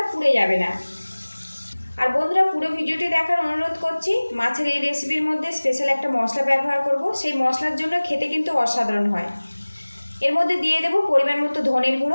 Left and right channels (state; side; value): inverted; both; correlation -1.00